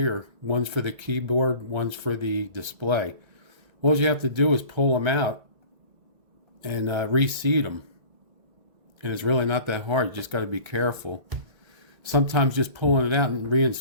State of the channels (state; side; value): late; left; 1.3 ms